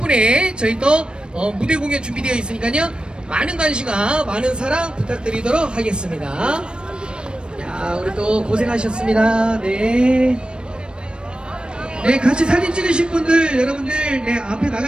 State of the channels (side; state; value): left; late; 0.053 ms